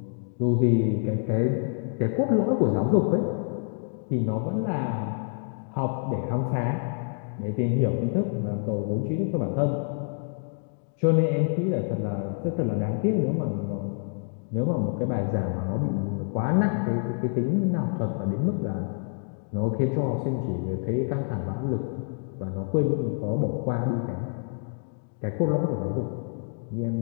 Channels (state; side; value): silent; right; 60 dB below the other